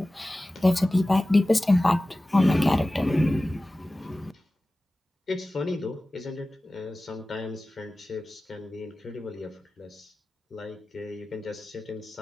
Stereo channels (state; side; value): normal; both; correlation 0.97